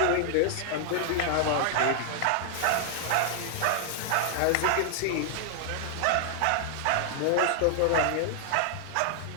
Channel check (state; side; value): different; both; correlation 0.00